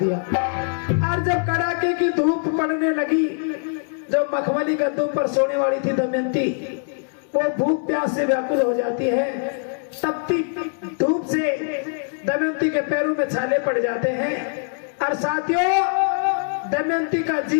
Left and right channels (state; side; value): silent; right; 60 dB below the other